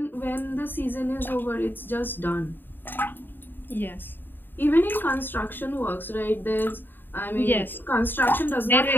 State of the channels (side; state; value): right; late; 0.093 ms